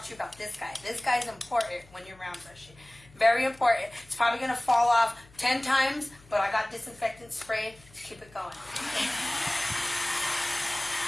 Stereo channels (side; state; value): left; noise; hum, 25 dB below the sound